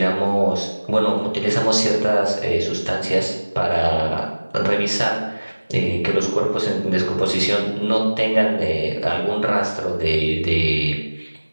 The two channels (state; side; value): inverted; both; correlation -1.00